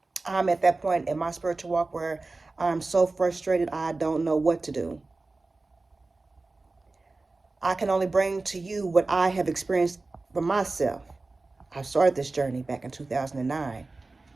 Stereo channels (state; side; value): quieter; left; 3.4 dB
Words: I'm at that point in my spiritual walk where I'm so frustrated I don't know what to do. I can only bring to you what I have experienced for myself. I started this journey back in 2009.